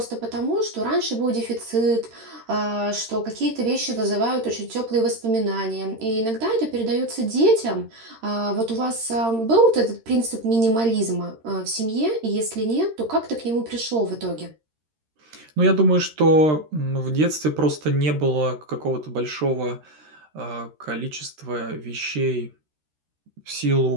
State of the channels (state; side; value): late; left; 13 ms